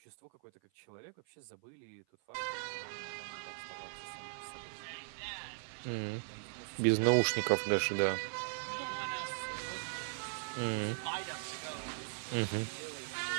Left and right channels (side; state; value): left; silent; 52 dB below the other